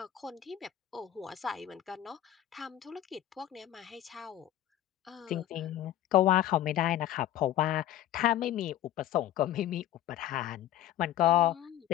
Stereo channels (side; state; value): right; quieter; 12.5 dB